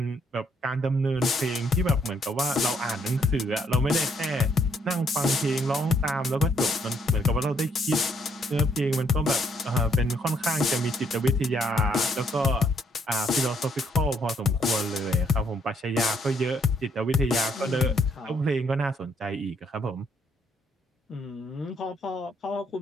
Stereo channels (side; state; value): both; normal; correlation 0.70